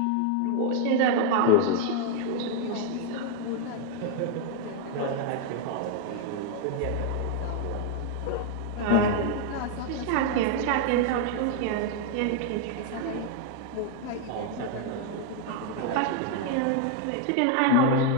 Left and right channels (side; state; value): both; different; correlation 0.00